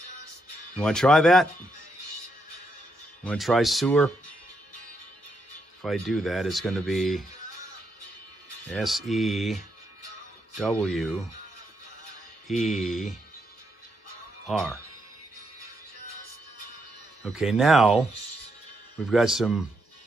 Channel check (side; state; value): both; normal; correlation 0.79